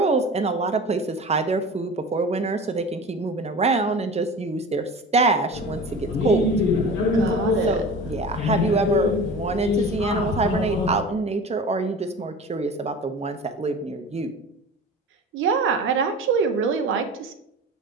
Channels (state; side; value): normal; both; correlation 0.35